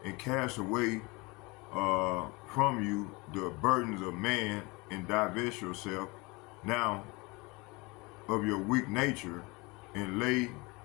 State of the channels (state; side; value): quieter; right; 25.7 dB